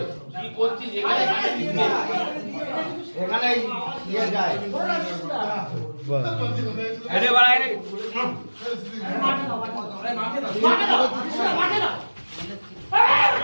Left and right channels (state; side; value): inverted; both; correlation -1.00